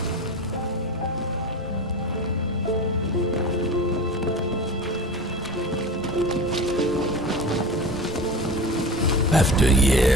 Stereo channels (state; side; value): normal; both; correlation 0.31